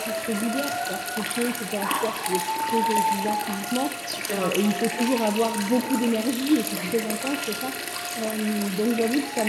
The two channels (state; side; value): identical; both; correlation 1.00